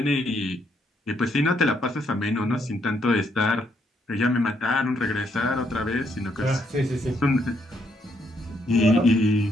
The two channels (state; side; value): normal; both; correlation 0.74